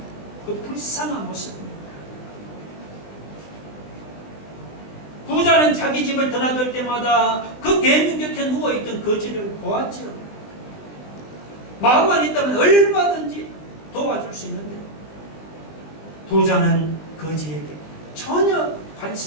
그 불쌍한 모습입니까? 부자는 자기 집을 드나들 때마다 그 개미 곁에 누워있던 거지를 보았죠. 마음만 있다면 얼마든지 도와줄 수 있는데 부자는 거지에게 전혀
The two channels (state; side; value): late; right; 20 ms